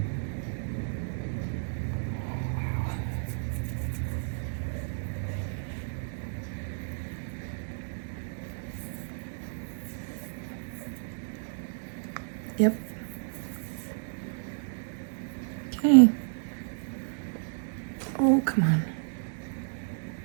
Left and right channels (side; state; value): left; silent; digital silence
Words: Yep. Okay. Oh, come on.